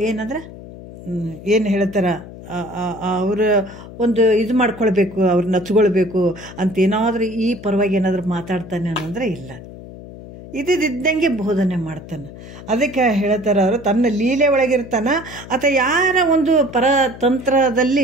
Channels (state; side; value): noise; left; hum, 15 dB below the sound